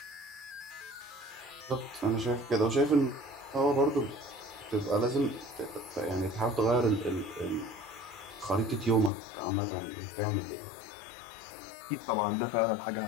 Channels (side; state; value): right; drops out; at 9.1 s